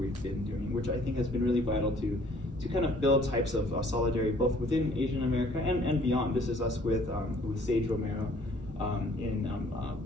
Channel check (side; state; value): both; normal; correlation 0.58